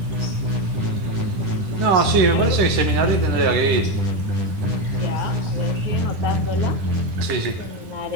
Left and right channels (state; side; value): late; left; 10 ms